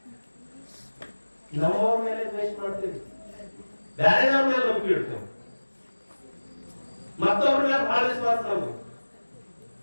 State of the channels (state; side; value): inverted; both; correlation -1.00